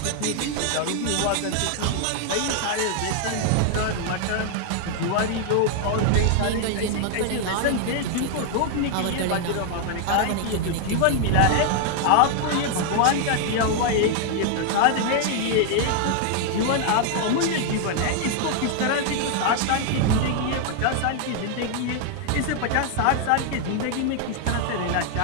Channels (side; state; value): both; different; correlation 0.00